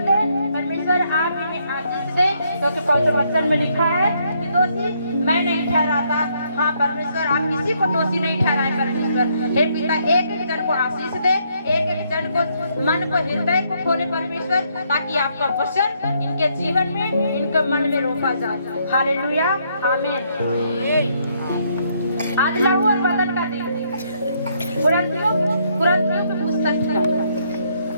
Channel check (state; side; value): inverted; both; correlation -0.72